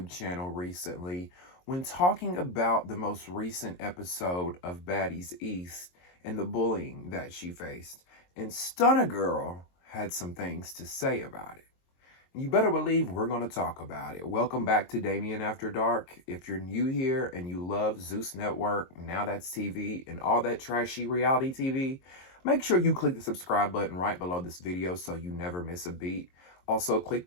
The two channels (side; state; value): right; late; 22 ms